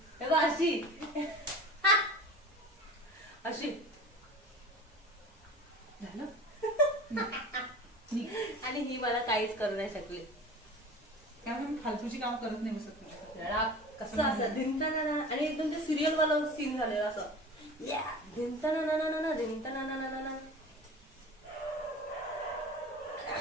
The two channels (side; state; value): both; normal; correlation 0.38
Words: अशी अशी झालं. आणि ही मला काहीच करू नाही शकली. त्यामुळे मी फालतूची काम करत नाही बसत तुझ्याकडे. कसं असं धिंताना. आणि एकदम ते सिरियल वाला सीन झालेला असं. धिंताना धिंताना.